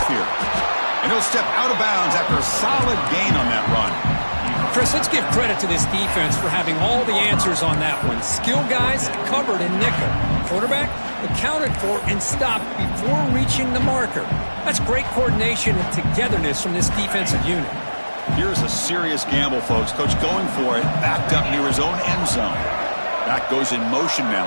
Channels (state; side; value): inverted; both; correlation -1.00